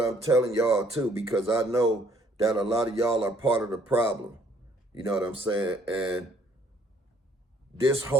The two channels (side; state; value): both; normal; correlation 0.63